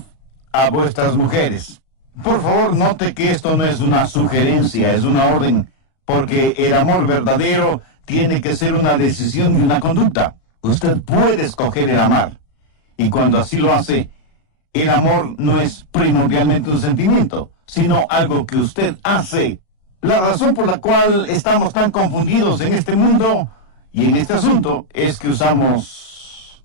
a vuestras mujeres. Por favor, note que esto no es una sugerencia, es una orden, porque el amor verdadero tiene que ser una decisión y una conducta. Usted puede escoger el amar, y cuando así lo hace, el amor no es primordialmente un sentimiento, sino algo que usted hace. La razón por la cual estamos tan confundidos en este mundo y en este asunto es que usamos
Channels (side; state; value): right; late; 38 ms